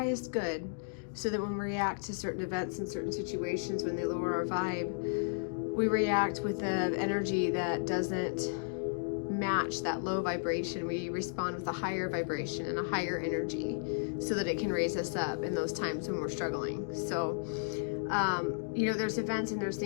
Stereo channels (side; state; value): right; silent; digital silence